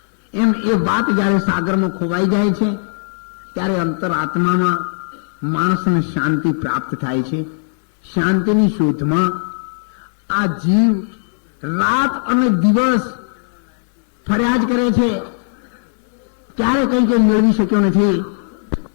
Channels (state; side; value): silent; right; digital silence